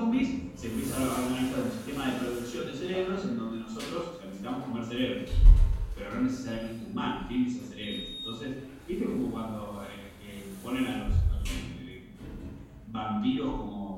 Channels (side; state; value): both; identical; correlation 1.00